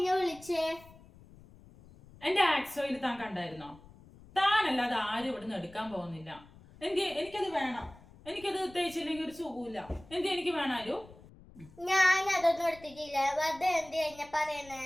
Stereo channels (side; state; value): left; noise; rumble, 22 dB below the sound